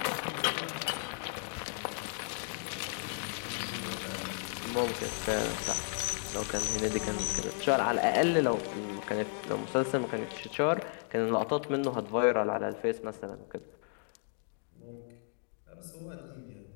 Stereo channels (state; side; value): silent; right; 55 dB below the other